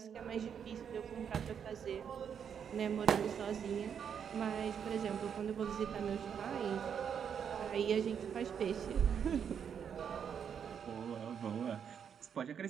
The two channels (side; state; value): left; quieter; 7.7 dB